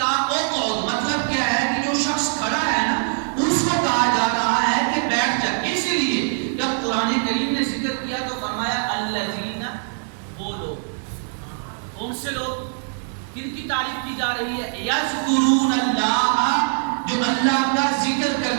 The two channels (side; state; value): left; silent; digital silence